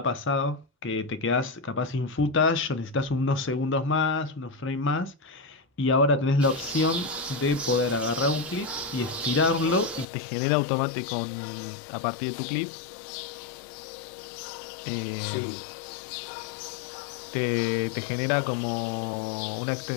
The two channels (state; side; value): drops out; right; at 10.1 s